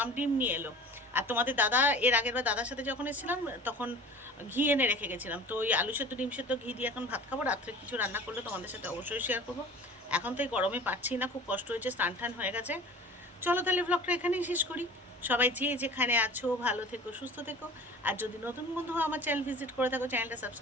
ডিম নিয়ে এলো। আর তোমাদের দাদা, এর আগের বার দাদার সাথে যখন এসেছিলাম তখন ঘি এনে রেখে গেছিলাম, তো ওই আলু সেদ্ধ ডিম সেদ্ধ ঘি দিয়ে এখন ভাত খাবো। রাত্রে কিছু রান্না করলে তোমাদের সাথে অবশ্যই শেয়ার করবো। এখন তো এই গরমে পাচ্ছি না, খুব কষ্ট হয়েছে, স্নান টান হয়ে গেছে। চলো তাহলে ব্লগটা এখানেই শেষ করি। সবাই যে যেখানে আছো ভালো থেকো, সুস্থ থেকো। আর যদি নতুন বন্ধু আমার চ্যানেল ভিজিট করে থাকো, চ্যানেলটা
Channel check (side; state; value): both; normal; correlation 0.41